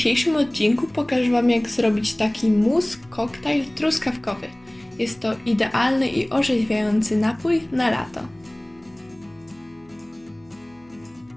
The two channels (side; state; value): left; noise; hum, 30 dB below the sound